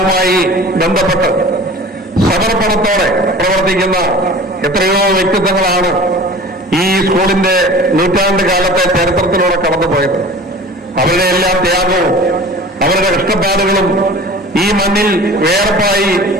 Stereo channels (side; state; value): both; normal; correlation 0.41